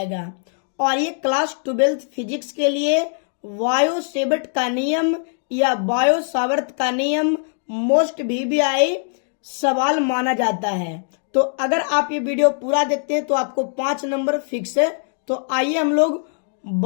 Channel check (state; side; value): silent; right; 65 dB below the other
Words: और ये क्लास 12th फिजिक्स के लिए बायो सेवर्ट का नियम या बायो सावर्त का नियम मोस्ट वीवीआई सवाल माना जाता है। तो अगर आप ये वीडियो पूरा देखते हैं तो आपको 5 नंबर फिक्स है। तो आइए हम लोग